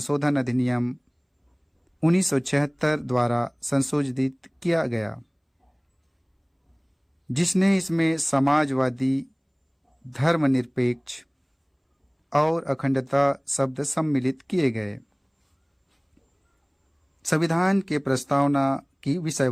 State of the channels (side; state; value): both; identical; correlation 1.00